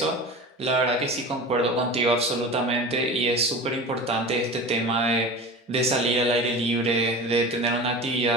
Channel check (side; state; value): both; normal; correlation 0.33